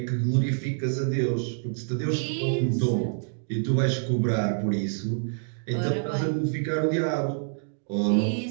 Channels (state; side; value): silent; left; digital silence